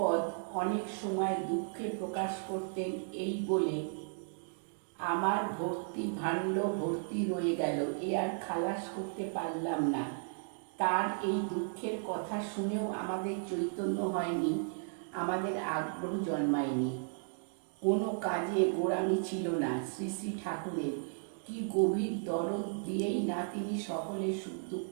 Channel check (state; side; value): silent; left; digital silence